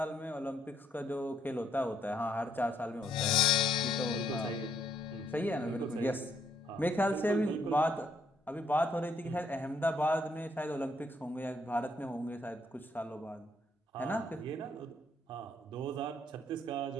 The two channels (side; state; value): both; normal; correlation 0.71